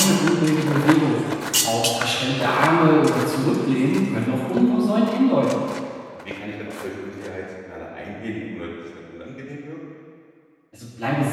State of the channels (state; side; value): identical; both; correlation 1.00